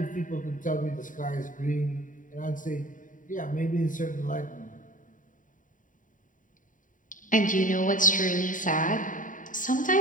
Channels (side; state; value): right; late; 0.38 ms